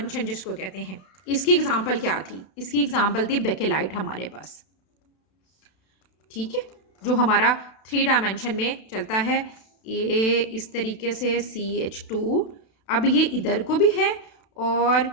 जिसको कहते हैं। इसकी एग्जांपल क्या थी, इसकी एग्जांपल थी बेकेलाइट हमारे पास, ठीक है, जो हमारा 3 डायमेंशन में चलता है। ये इस तरीके से CH2, अब ये इधर को भी है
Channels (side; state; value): right; late; 32 ms